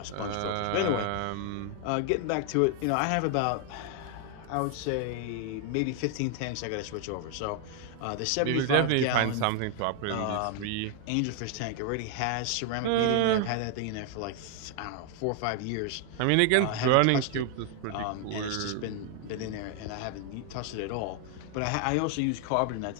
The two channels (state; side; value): different; both; correlation 0.00